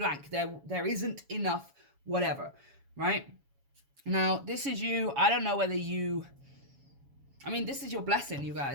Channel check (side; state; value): left; late; 7.2 ms